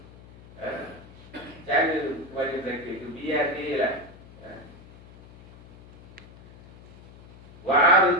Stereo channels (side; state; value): left; noise; hum, 21 dB below the sound